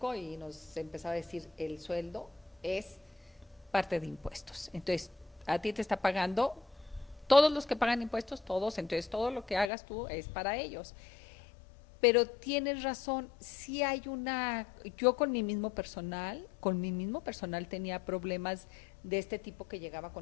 y nos empezaba a decir, el sueldo es parte de impuestos. Entonces, a ti te está pagando todos los que pagan impuestos, todos, entonces todo lo que hagas tú es para ellos. Pero tienes razón, sí hay yo con mi mismo personal tenía problemas de este tipo que llegaba a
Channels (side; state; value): right; drops out; at 9.7 s